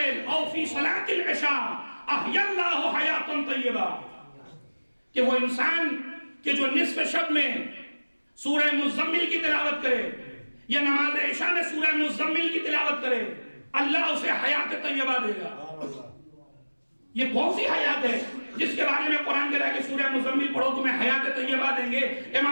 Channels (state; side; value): inverted; both; correlation -1.00